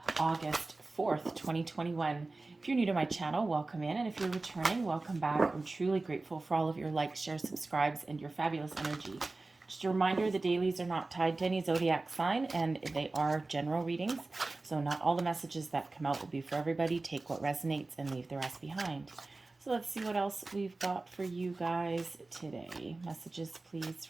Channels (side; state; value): left; quieter; 3.3 dB